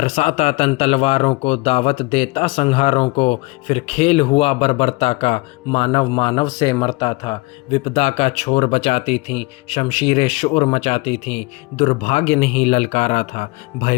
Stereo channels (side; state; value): right; quieter; 24.2 dB